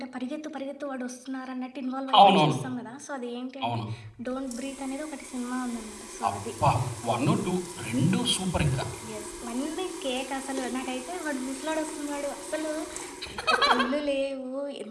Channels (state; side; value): identical; both; correlation 1.00